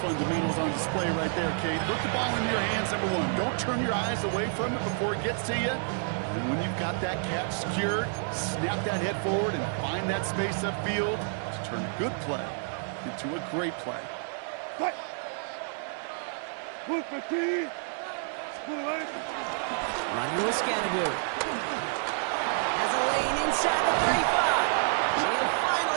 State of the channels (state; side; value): silent; left; 58 dB below the other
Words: on display right there, Kate. Put the ball in your hands, number 1. Don't turn your eyes away from it before it gets to you. And when you've got that catch secured, snap that head forward and find that space upfield to turn a good play into a great play. Running with Scattergood. Has a lane inside the 35. And he'll